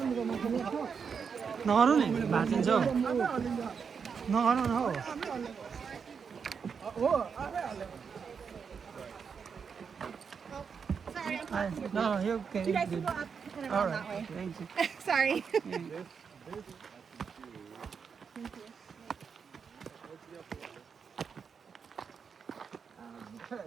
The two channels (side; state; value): left; quieter; 6.2 dB